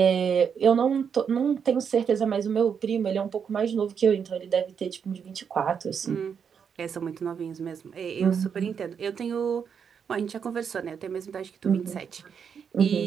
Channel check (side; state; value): left; quieter; 7.0 dB